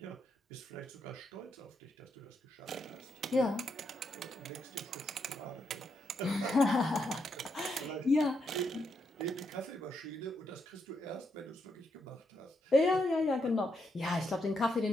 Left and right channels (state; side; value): normal; both; correlation 0.80